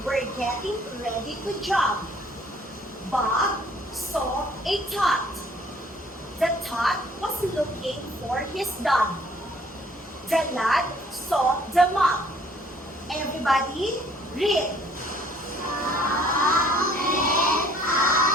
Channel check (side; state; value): both; normal; correlation 0.59